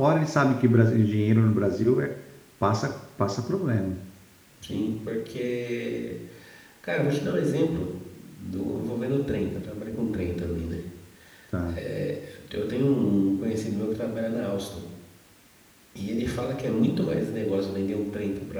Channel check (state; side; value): identical; both; correlation 1.00